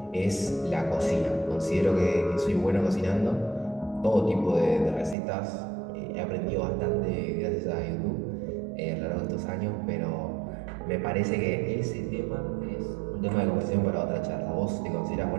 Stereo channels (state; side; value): drops out; left; at 5.2 s